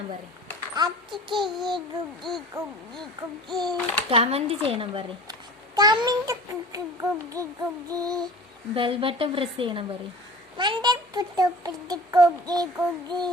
പറയും. കമന്റ് ചെയ്യണം പറയും. ബെൽ ബട്ടൺ പ്രസ് ചെയ്യണം പറയും.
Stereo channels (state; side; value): normal; both; correlation 0.41